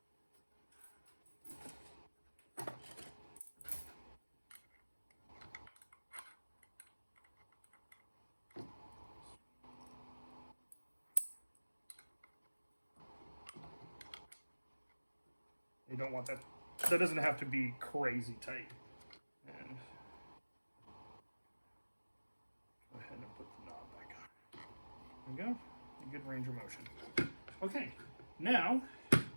You don't want that. That doesn't have to be crazy tight. And go ahead and put the knob back on. There we go. A good range of motion. Okay, now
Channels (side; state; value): both; inverted; correlation -1.00